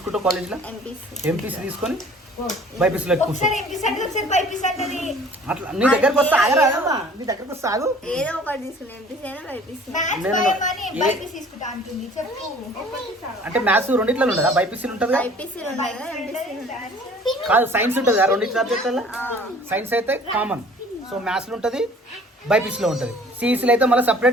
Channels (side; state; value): both; normal; correlation 0.51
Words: కాలేజ్లో? ఎంపీసీ తీసుకొని బైపీసీలో కూర్చో. అట్లా నీ దగ్గరకు వస్తా ఆగరాదమ్మా, నీ దగ్గరకు వస్తా ఆగు. అంటే మ్యాథ్స్ రెండిట్లో ఉండదా? బైపీసీలు ఉంటుంది కాదు, సైన్స్ ఉంటుంది కదా రెండింటి సబ్జెక్టులలో. సైన్స్ అయితే కామన్, సో మ్యాథ్స్లో ఉంటుంది, బైపీసీలో ఉంటుంది. సిఈసీలో అయితే మళ్ళీ